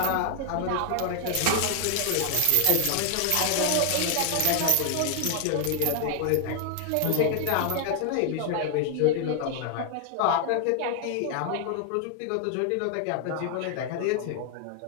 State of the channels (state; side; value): different; both; correlation 0.00